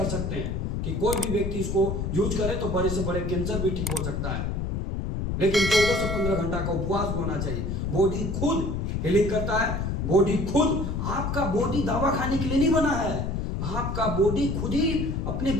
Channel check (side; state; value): left; noise; rumble, 2 dB below the sound